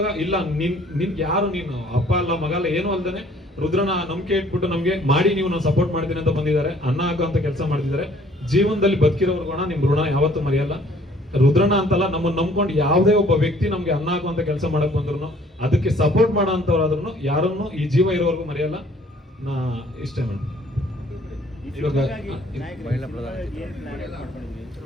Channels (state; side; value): normal; both; correlation 0.58